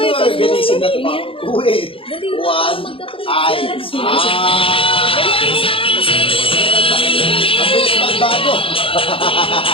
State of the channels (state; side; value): late; right; 0.26 ms